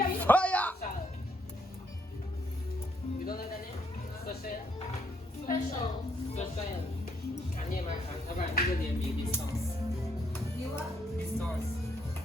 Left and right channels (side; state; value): both; normal; correlation 0.72